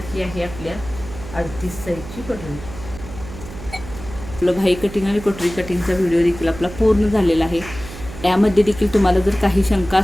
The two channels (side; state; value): right; noise; hum, 13 dB below the sound